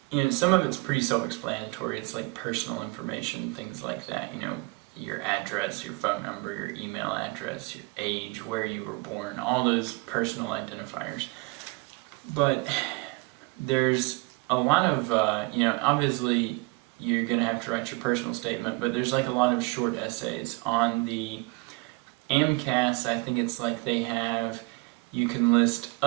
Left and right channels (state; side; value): quieter; left; 26.8 dB